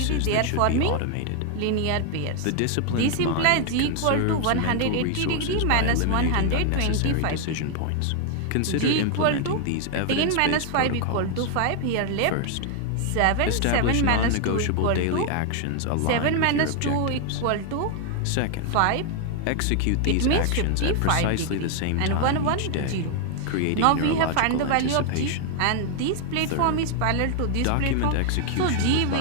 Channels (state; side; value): different; both; correlation 0.00